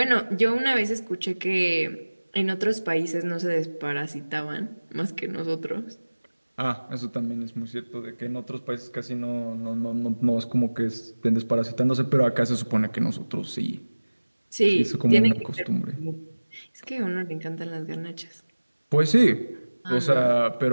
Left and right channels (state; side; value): inverted; both; correlation -1.00